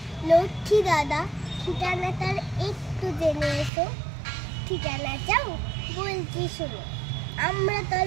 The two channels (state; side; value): drops out; left; at 3.7 s